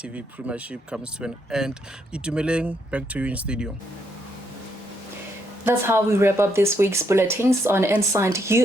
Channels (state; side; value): normal; both; correlation 0.76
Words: Premiership comes to an end. Itumeleng, back to you in studio. That's how we wrap up this week's bulletins on Inside